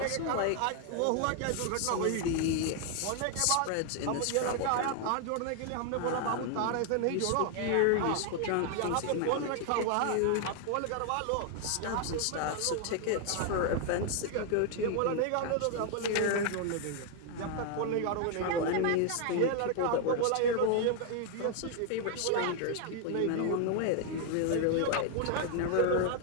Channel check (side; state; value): both; different; correlation 0.00